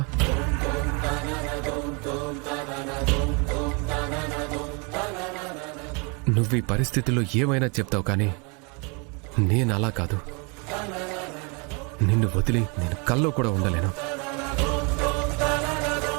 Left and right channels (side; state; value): left; quieter; 32.6 dB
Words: నువ్వు ఈ పరిస్థితుల్లో ఏమైనా చెప్తావు, కానీ నేను అలా కాదు. నిన్ను వదిలి నేను కల్లో కూడా ఉండలేను.